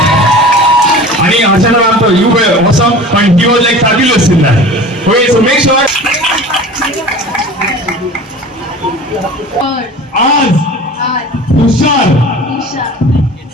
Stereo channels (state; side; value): normal; both; correlation 0.39